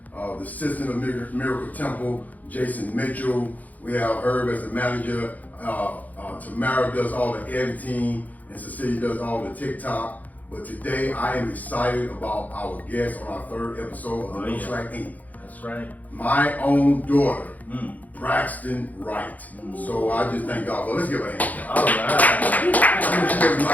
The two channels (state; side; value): late; right; 0.079 ms